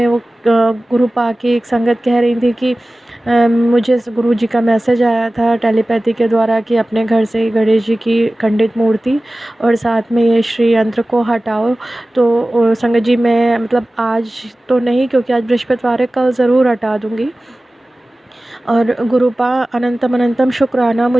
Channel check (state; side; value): normal; both; correlation 0.97